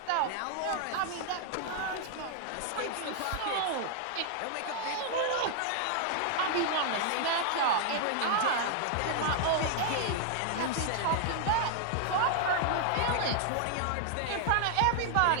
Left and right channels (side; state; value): both; different; correlation 0.00